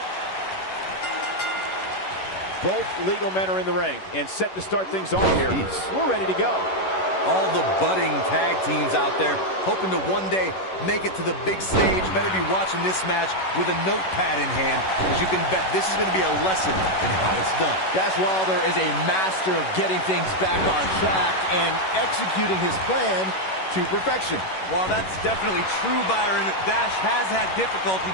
Both legal men are in the ring and set to start things off here. We're ready to go. All the budding tag teams out there hoping to one day make it to the big stage better be watching this match with a notepad in hand, because you can bet this is going to be a lesson in how it's done. Dash Wilder is a master of getting things back on track and executing his plan to perfection. While that's definitely true, Byron, Dash has had difficulty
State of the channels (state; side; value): late; right; 11 ms